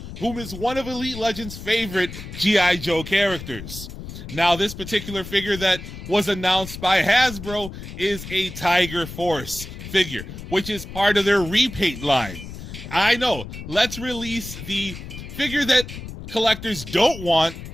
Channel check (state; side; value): noise; left; rumble, 11 dB below the sound